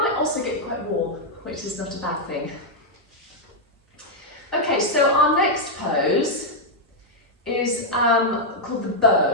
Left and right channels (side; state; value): both; normal; correlation -0.03